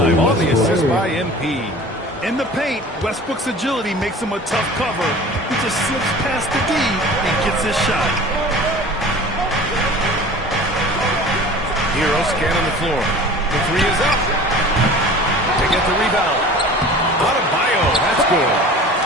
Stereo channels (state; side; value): normal; both; correlation 0.42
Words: on the assist by MP. In the paint, Westbrook's agility makes him a tough cover. He just slips past the D and gets his shot. Hero scanning the floor. The 3 is up. They get the rebound. Adebayo, that's good.